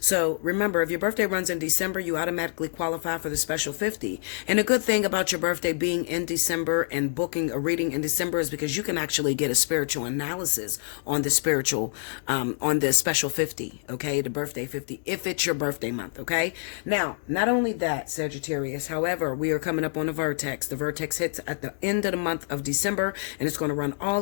remember, if your birthday runs in December, you automatically qualify for the special 50. And a good thing about your birthday being in December and booking a reading in December is because you can actually get a spiritual analysis on the on the special 50, okay? The birthday 50, if it's your birthday month, okay? Now, not only that, Sagittarius, however, we are coming up on the vertex. The vertex hits at the end of the month of December, and it's going to run all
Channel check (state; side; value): silent; right; digital silence